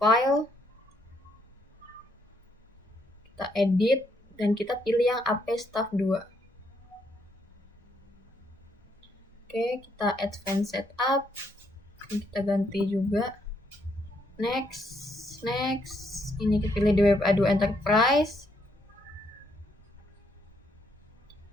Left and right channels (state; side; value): normal; both; correlation 0.74